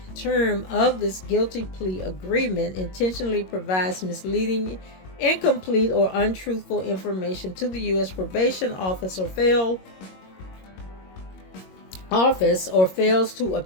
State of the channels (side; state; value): right; late; 22 ms